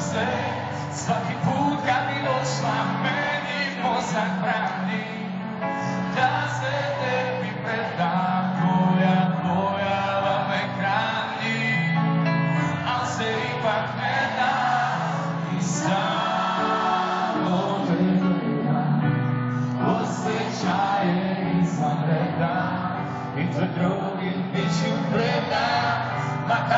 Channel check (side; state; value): both; identical; correlation 1.00